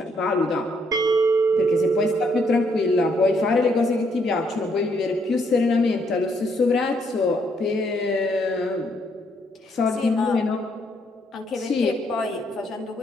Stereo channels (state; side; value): normal; both; correlation 0.72